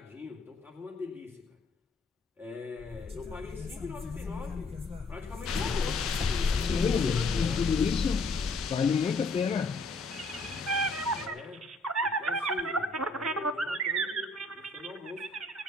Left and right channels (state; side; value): quieter; right; 3.0 dB